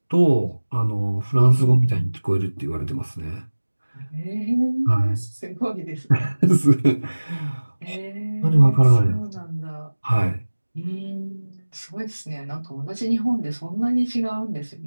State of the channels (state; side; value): inverted; both; correlation -1.00